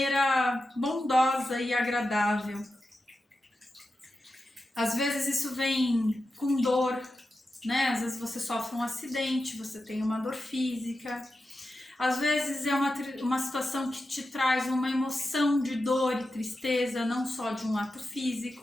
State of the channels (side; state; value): both; normal; correlation 0.90